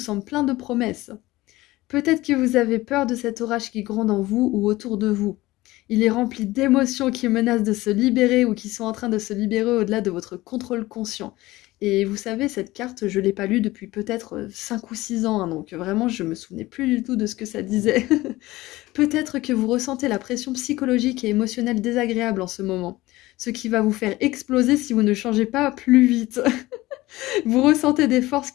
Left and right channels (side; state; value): right; quieter; 18.6 dB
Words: plein de promesses. Peut-être que vous avez peur de cet orage qui gronde en vous ou autour de vous. Il est rempli d'émotions qui menacent de se libérer ou qui sont en train de se libérer au-delà de votre contrôle conscient. Et vous savez, cette carte, je ne l'ai pas lue depuis peut-être 5 ou 6 ans, hein, donc vraiment, je ne me souvenais plus du tout de ce que ça disait. Peut-être que vous ressentez la pression psychologique et émotionnelle désagréable en ce moment, ce qui va vous faire exploser si vous ne changez pas plus vite. Vous ressentez des forces